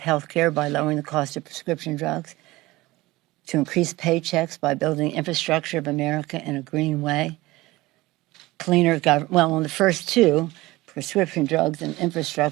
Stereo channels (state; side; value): quieter; left; 19.7 dB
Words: care by lowering the cost of prescription drugs, to increase paychecks by building infrastructure of America in a green way, cleaner government. Well, on the first two, prescription drugs and